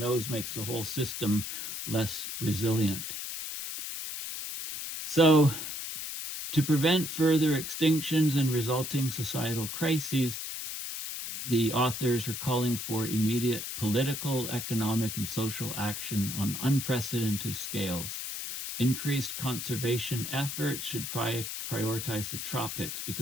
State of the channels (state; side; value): noise; left; hiss, 6 dB below the sound